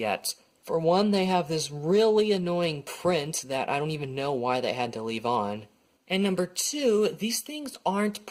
For one, they have this really annoying print that I don't even know why they had to leave on. And number two, these things aren't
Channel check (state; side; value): identical; both; correlation 1.00